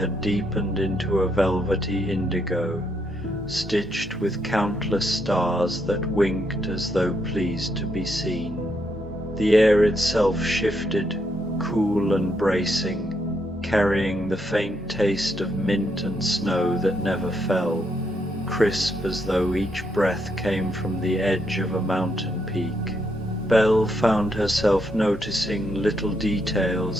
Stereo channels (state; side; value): normal; both; correlation 0.77